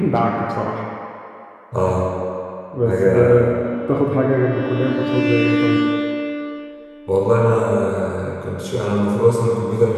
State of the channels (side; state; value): both; identical; correlation 1.00